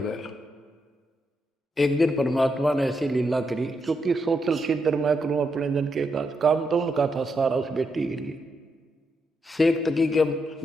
गया। एक दिन परमात्मा ने ऐसी लीला करी, क्योंकि सोचल छिद्र मैं करूं अपने जन के काम तो उनका था सारा उस बेटी के लिए। शेख तकी के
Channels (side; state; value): both; normal; correlation 0.81